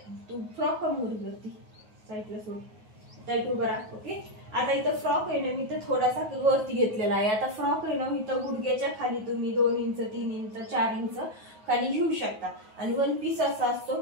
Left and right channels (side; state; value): left; late; 9.4 ms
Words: तू फ्रॉक कमी करती साईडला सोड, टाईट उभा राहा. ओके. आता इथं फ्रॉक आहे ना, मी इथं थोडासा वरती घेतलेला आहे. आता फ्रॉक आहे ना, इथं गुडघ्याच्या खाली तुम्ही 2 इंच 3 इंच 4 इंच खाली घेऊ शकता. आणि वन पीस असा असतो